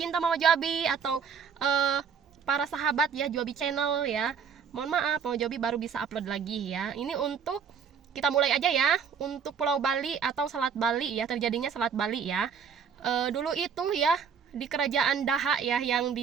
Mama Jobi atau eh, para sahabat ya Jobi channel ya, mohon maaf Mama Jobi baru bisa upload lagi ya. Ini untuk kita mulai aja ya, untuk Pulau Bali atau Selat Bali ya, terjadinya Selat Bali ya. Dulu itu ya di kerajaan Daha ya, yang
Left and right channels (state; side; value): quieter; left; 6.8 dB